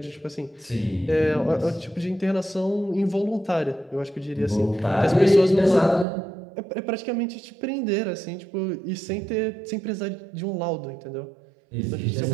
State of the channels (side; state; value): left; drops out; at 6.1 s